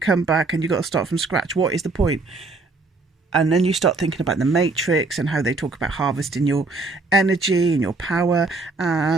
back and you've got to start from scratch. What is the point? And then you start thinking about the Matrix and how they talk about harvesting your energy and your power.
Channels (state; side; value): quieter; left; 3.6 dB